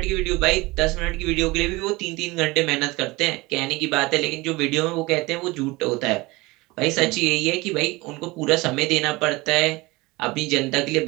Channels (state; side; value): quieter; left; 22.2 dB